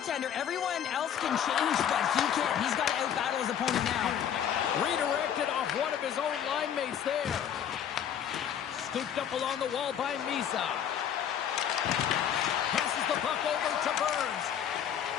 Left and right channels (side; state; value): right; quieter; 9.2 dB